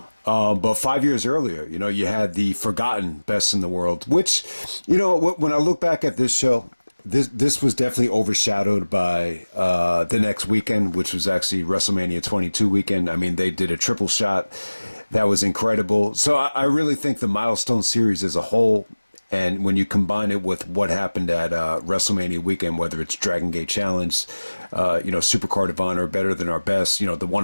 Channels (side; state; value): both; inverted; correlation -1.00